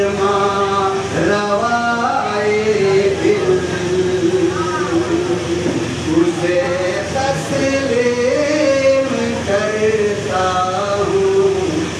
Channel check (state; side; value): identical; both; correlation 1.00